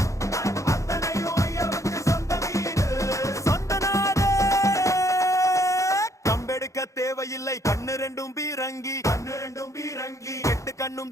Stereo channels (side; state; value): right; late; 0.15 ms